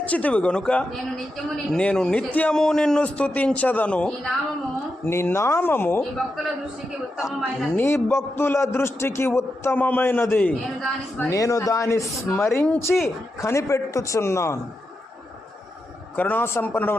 గనుక నేను నిత్యము నిన్ను స్తుతించదను. నీ నామము నీ భక్తుల దృష్టికి ఉత్తమమైనది. నేను దాన్ని స్మరించి కనిపెట్టుచున్నాను.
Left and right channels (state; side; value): normal; both; correlation 0.87